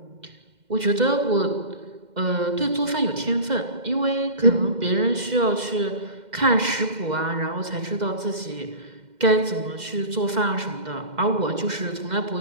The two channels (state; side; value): late; left; 2.1 ms